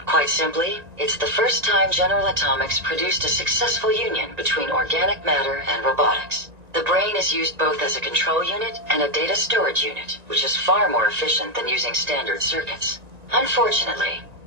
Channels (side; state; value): left; late; 1.9 ms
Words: Quite simply, it's the first time General Atomics produced a successful union between organic matter and robotics. The brain is used both as a control unit and a data storage unit, which is far more efficient than using standard circuits. Unfortunately,